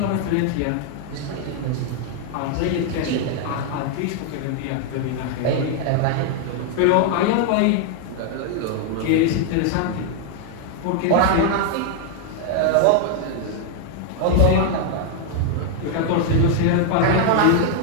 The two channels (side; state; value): both; different; correlation 0.00